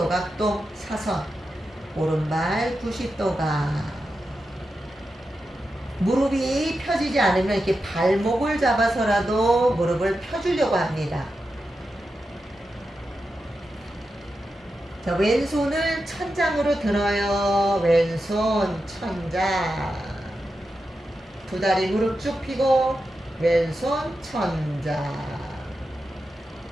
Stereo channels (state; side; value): normal; both; correlation 0.89